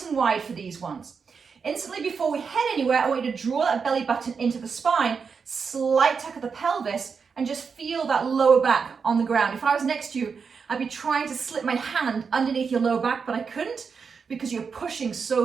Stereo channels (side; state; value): left; quieter; 5.7 dB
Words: and wide for these ones. Instantly before we head anywhere, I want you to draw that belly button into the spine, slight tuck of the pelvis, and just feel that lower back on the ground. If I was next to you, I'd be trying to slip my hand underneath your lower back, but I couldn't because you're pushing